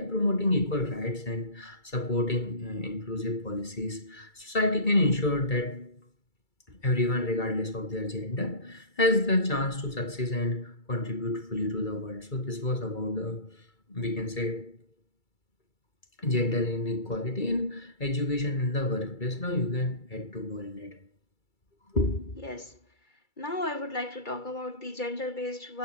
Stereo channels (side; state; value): right; late; 2.3 ms